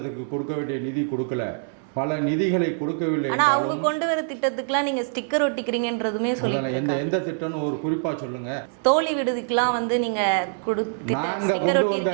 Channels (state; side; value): silent; left; digital silence